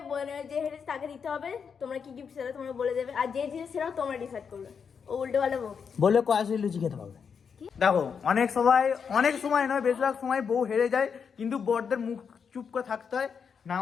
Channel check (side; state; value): right; quieter; 6.5 dB